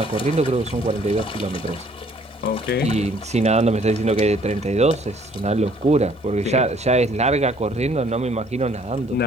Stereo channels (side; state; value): both; normal; correlation 0.60